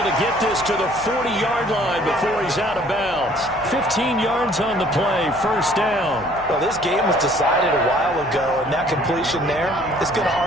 to get this to the 40-yard line before he's out of bounds. 15 yards on the play, first down. Well, this game was decided a while ago, and that completion there is going to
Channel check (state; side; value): noise; left; hum, 21 dB below the sound